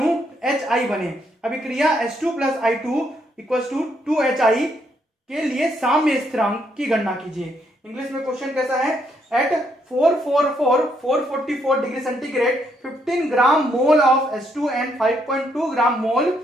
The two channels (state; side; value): normal; both; correlation 0.74